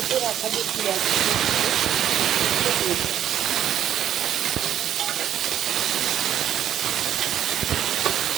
রাখা যে পেঁয়াজ দিয়ে দিই।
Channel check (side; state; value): left; quieter; 10.5 dB